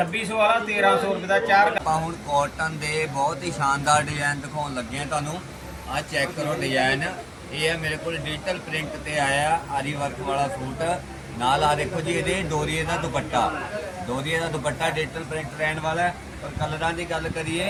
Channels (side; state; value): both; identical; correlation 1.00